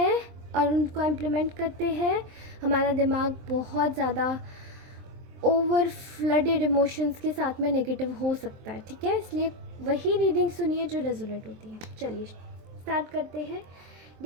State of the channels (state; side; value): late; left; 23 ms